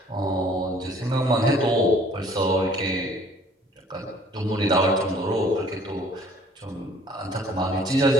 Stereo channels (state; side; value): normal; both; correlation 0.56